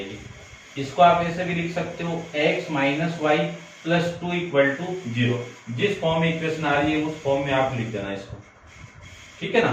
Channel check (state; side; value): identical; both; correlation 1.00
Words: इसको आप ऐसे भी लिख सकते हो, x minus y plus 2 equal to 0। जिस फॉर्म में इक्वेशन आ रही है उस फॉर्म में आप लिख देना इसको, ठीक है